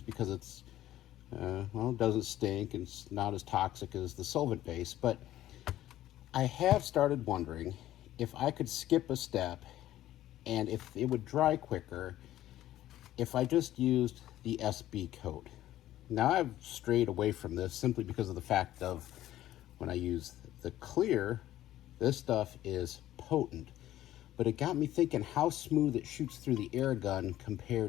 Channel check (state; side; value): quieter; right; 13.7 dB